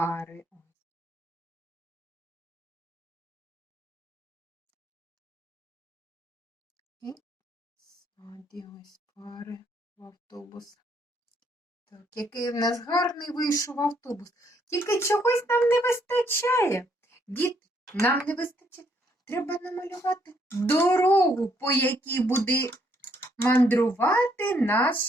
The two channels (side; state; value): both; normal; correlation 0.70